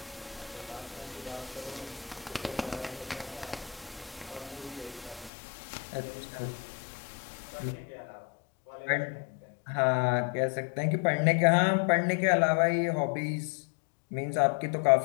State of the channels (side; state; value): right; drops out; at 5.3 s